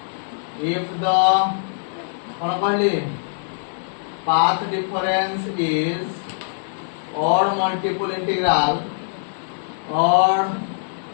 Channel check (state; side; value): silent; right; 64 dB below the other